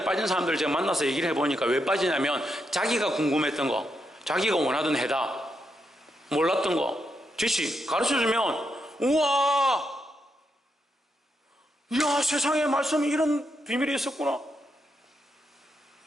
빠진 사람들 제가 만나서 얘기를 해보니까 왜 빠지냐면 자기가 궁금했던 거, 자기가 원하던 해답, 몰랐던 거 지시 가르쳐주면 우와, 이야, 세상에 말씀에 이런 비밀이 있었구나.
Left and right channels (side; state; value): both; normal; correlation 0.82